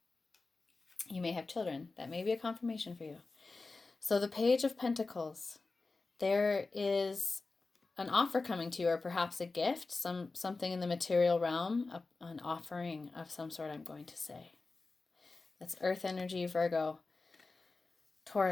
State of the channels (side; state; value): right; quieter; 3.7 dB